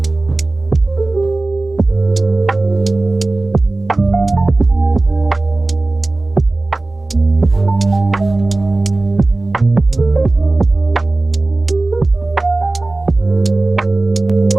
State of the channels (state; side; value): quieter; left; 3.0 dB